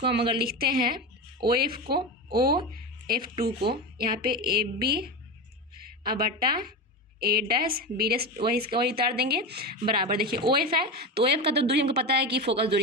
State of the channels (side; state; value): both; normal; correlation 0.21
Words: हम अगर लिखते हैं OF2 को यहाँ पे AB अब बटा A डैश B डैश वही उतार देंगे बराबर, देखिए OF है तो OF का तो दूरी हमको पता है कि फोकस